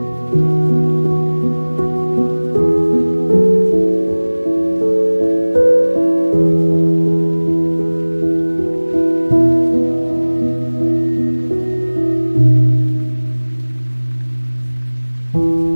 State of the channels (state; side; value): inverted; both; correlation -1.00